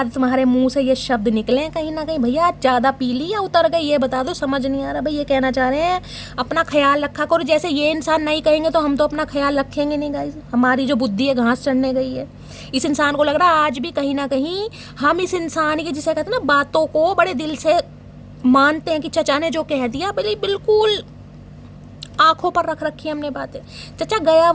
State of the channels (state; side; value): identical; both; correlation 1.00